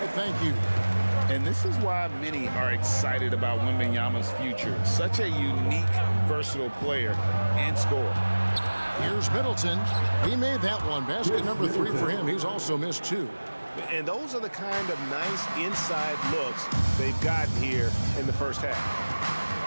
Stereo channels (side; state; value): both; inverted; correlation -1.00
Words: Thank you. And this is why many are excited about Wembanyama's future. Such a unique, versatile player and scorer. Here's Middleton. He made that one. Basket number 3 for him. He's also missed 2. And those are the kind of nice inside looks they've gotten here in the first half.